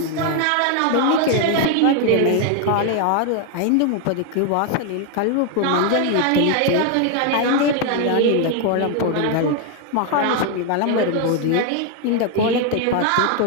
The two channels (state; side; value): different; both; correlation 0.01